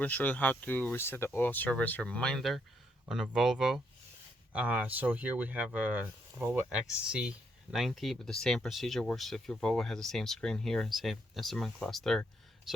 to show you how to reset the oil service reminder on a Volvo. So here we have a Volvo XC90, but the same procedure works if your Volvo has the same screen here and same instrument cluster.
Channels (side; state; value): both; normal; correlation 0.75